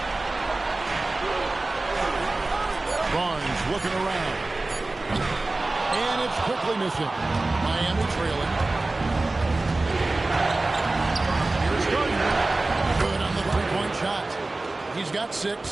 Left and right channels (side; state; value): left; quieter; 3.1 dB